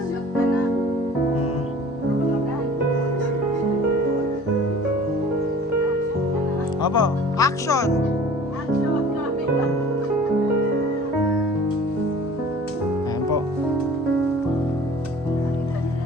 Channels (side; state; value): both; normal; correlation 0.46